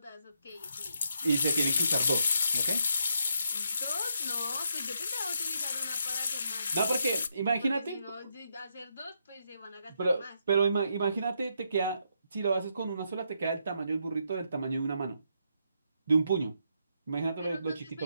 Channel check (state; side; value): inverted; both; correlation -0.78